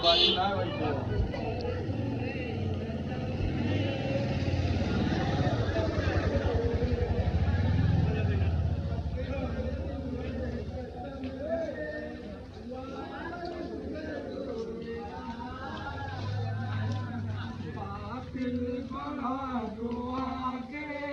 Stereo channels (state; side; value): identical; both; correlation 1.00